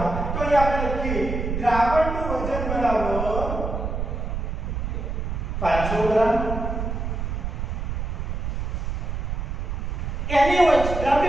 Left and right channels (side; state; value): right; noise; rumble, 3 dB below the sound